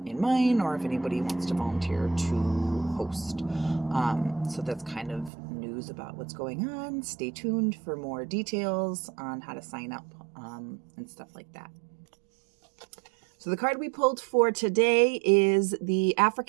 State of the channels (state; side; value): drops out; left; at 5.3 s